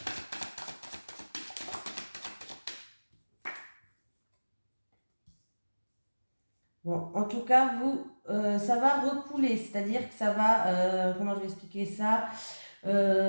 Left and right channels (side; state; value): both; inverted; correlation -1.00